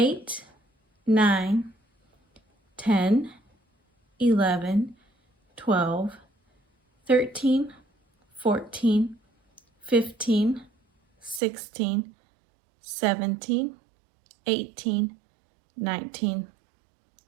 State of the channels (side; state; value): left; drops out; at 11.4 s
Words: 9, 10, 11, 12, 13, 14, 15, 16, 17, 18, 19,